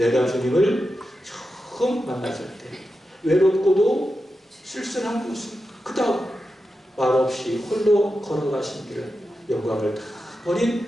주님을 처음 만났을 때 외롭고도 쓸쓸한 곳을 그 다음 말없이 홀로 걸어가신 길을 영광을 다 버린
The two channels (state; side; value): normal; both; correlation 0.90